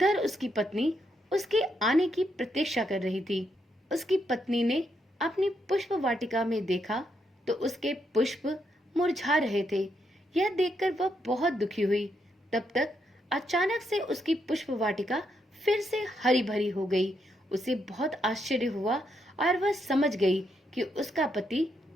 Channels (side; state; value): both; normal; correlation 0.79